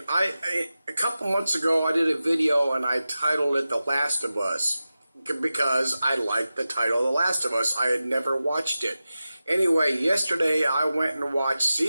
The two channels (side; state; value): both; inverted; correlation -0.94